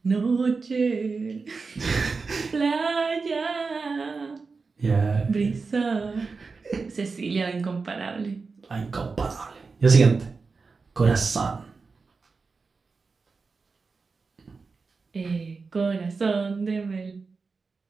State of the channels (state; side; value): quieter; left; 4.5 dB